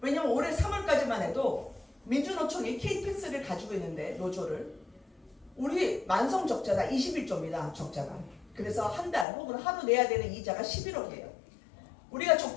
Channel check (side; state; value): right; drops out; at 9.2 s